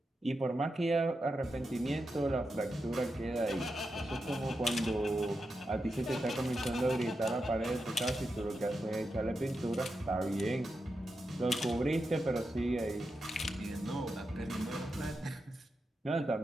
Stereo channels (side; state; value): both; normal; correlation 0.88